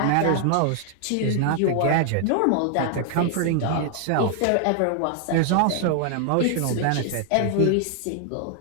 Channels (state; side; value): different; both; correlation 0.00